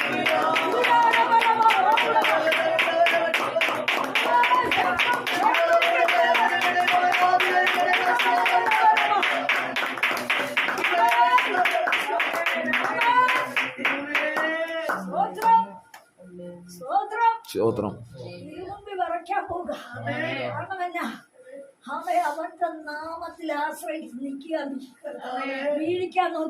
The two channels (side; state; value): both; identical; correlation 1.00